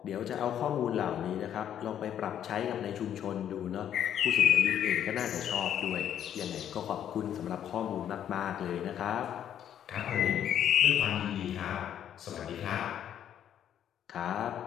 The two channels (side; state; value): right; quieter; 10.0 dB